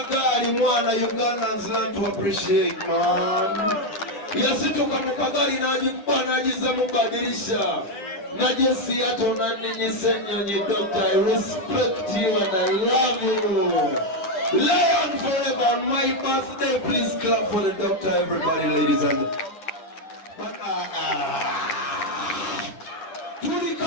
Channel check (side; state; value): right; late; 9.9 ms